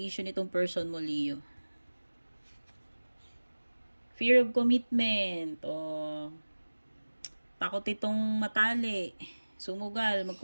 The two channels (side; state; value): both; inverted; correlation -1.00